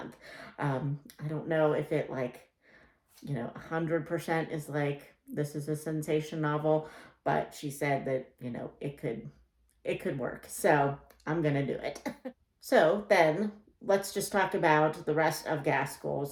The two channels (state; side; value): identical; both; correlation 1.00